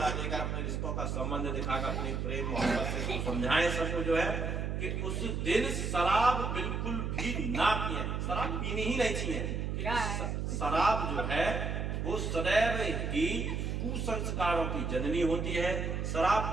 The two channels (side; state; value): right; noise; hum, 1 dB below the sound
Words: देकर, अपने रिश्तों का संबंध दिखाकर, अपने प्रेम मोहब्बत से समझाएं सबको जो है कि उस दिन शराब बिल्कुल भी ना पिए, शराब पीनी ही नहीं चाहिए। शराब जो है वो सदैव ही कुसंस्कारों की जननी होती है। शराब